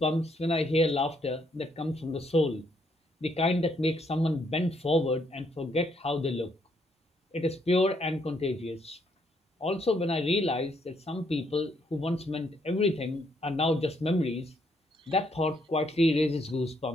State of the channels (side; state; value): both; normal; correlation 0.72